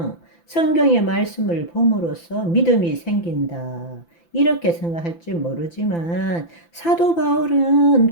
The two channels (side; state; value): right; late; 5.9 ms